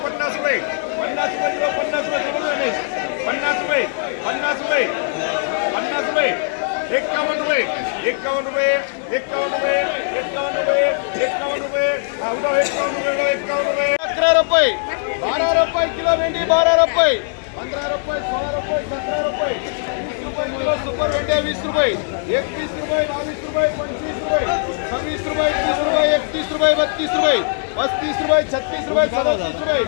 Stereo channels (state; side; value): silent; right; digital silence